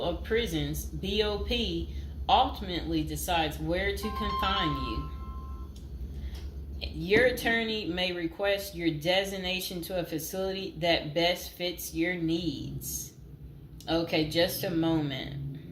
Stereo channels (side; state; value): both; identical; correlation 1.00